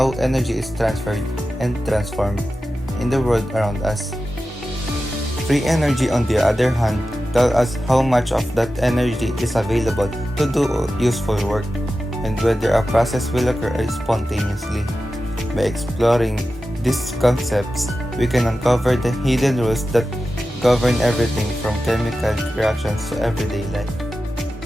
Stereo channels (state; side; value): normal; both; correlation 0.93